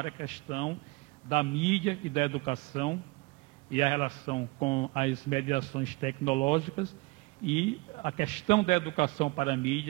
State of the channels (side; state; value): left; quieter; 25.1 dB